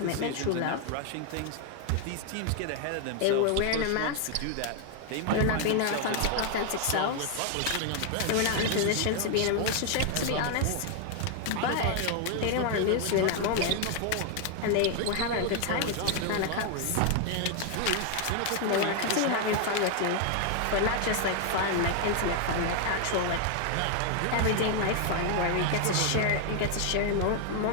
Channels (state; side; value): different; both; correlation 0.00